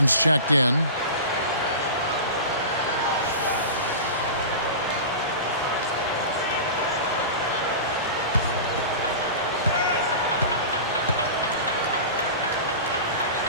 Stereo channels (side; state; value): both; inverted; correlation -0.31